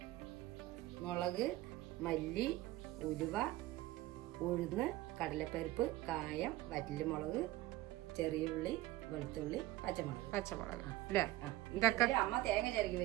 മുളക്, മല്ലി, ഉലുവ, ഉഴുന്ന്, കടലപ്പരിപ്പ്, കായം, വറ്റൽമുളക്, ചെറിയ ഉള്ളി, വെളുത്തുള്ളി, പച്ചമുളക് അല്ലേ? ഇതൊക്കെ അമ്മ തേങ്ങ ചിരകി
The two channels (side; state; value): left; quieter; 17.1 dB